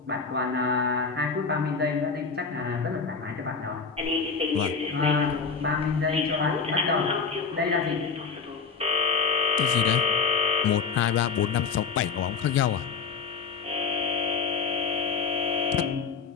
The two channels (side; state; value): right; quieter; 5.3 dB